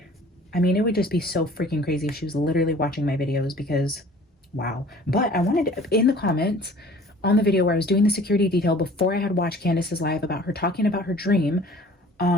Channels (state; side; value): normal; both; correlation 0.49